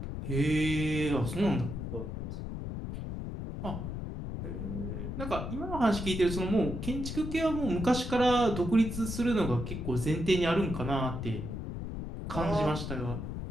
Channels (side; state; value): left; noise; rumble, 6 dB below the sound